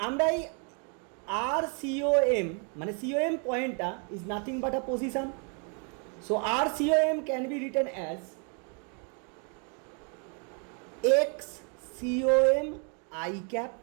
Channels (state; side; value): quieter; left; 39.2 dB